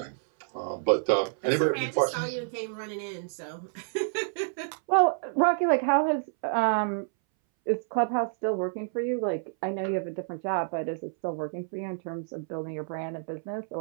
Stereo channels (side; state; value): left; silent; 59 dB below the other